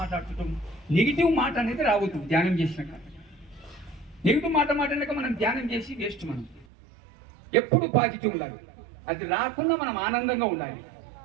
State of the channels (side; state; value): left; drops out; at 6.7 s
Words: నెగిటివ్ మాట అనేది రావద్దు ధ్యానం చేసినాక. నెగిటివ్ మాట మాట్లాడాక మనం ధ్యానం చేసి వేస్ట్. మనం ఎప్పుడు పాజిటివ్ ఉండాలి. అది రాకుండా మనం ఆనందంగా ఉండాలి.